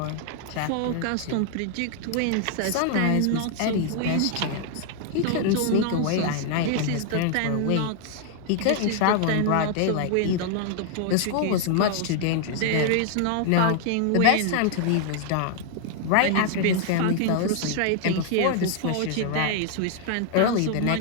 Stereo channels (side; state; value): both; different; correlation 0.00